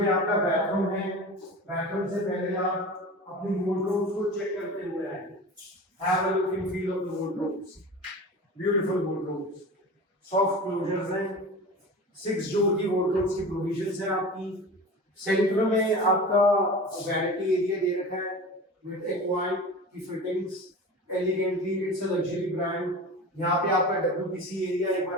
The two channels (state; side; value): normal; both; correlation 0.34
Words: आपका बेडरूम है। बेडरूम से पहले आप अपनी वार्डरोब्स को चेक करते हुए आए। Have a look and feel of the wardrobes, beautiful wardrobes, soft closures हैं। 6 डोर की वार्डरोब्स की प्रोविजंस हैं आपकी। सेंटर में आपका वैनिटी एरिया दे रखा है विद एक्वाइड की fittings, elegantly. It's a luxury brand. यहाँ पे आपका WBC एरिया एक बार